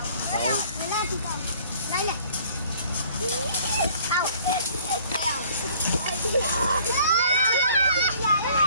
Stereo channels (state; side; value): inverted; both; correlation -0.54